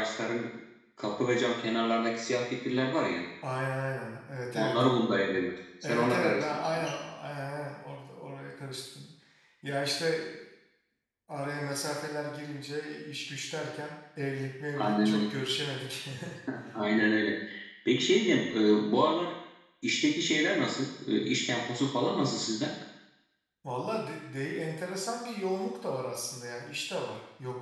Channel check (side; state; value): both; identical; correlation 1.00